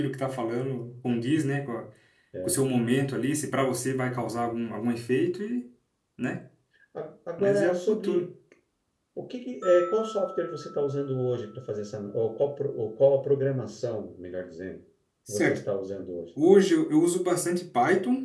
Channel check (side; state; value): both; identical; correlation 1.00